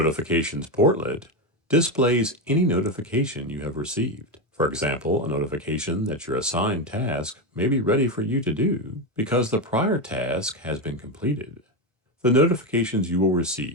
portlet displays any notification you have received. For example, a notification that your assigned task may be ready for you to do because the prior task has been completed. The notifications you will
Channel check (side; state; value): both; normal; correlation 0.12